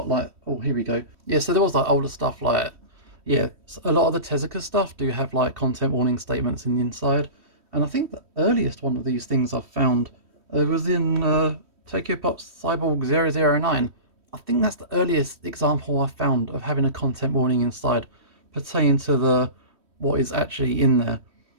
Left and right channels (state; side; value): late; left; 3.1 ms